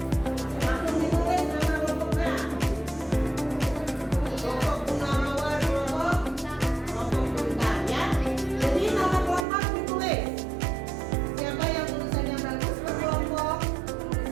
langsung ditulis nama kelompoknya. Kelompok bunga mawar, kelompok bintang ya. Jadi nama kelompok ditulis. Siapa yang tulisannya bagus berkelompok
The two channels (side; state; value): left; drops out; at 9.5 s